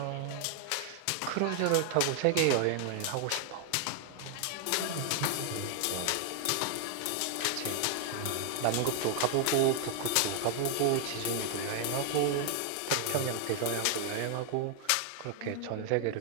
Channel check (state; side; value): different; both; correlation 0.00